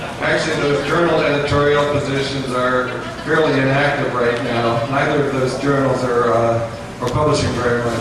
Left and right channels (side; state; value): both; identical; correlation 1.00